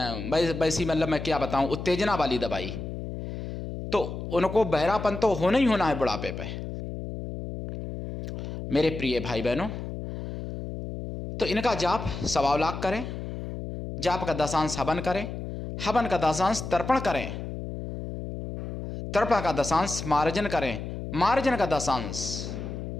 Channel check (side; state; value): left; noise; hum, 7 dB below the sound